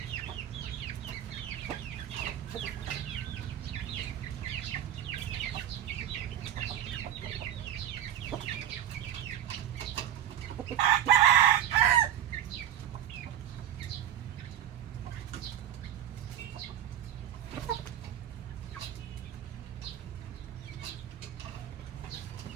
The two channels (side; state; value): left; quieter; 10.8 dB